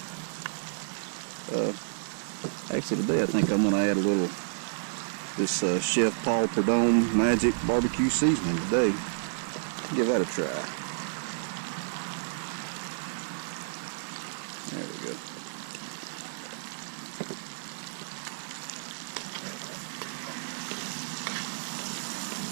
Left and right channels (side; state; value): left; silent; 57 dB below the other